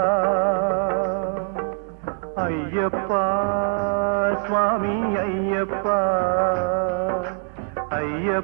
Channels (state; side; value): silent; left; digital silence